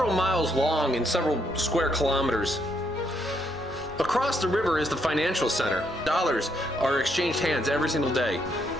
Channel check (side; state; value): both; normal; correlation 0.75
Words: miles long and several square kilometers. Across the river is the financial center. Dollars are exchanged hands every single day.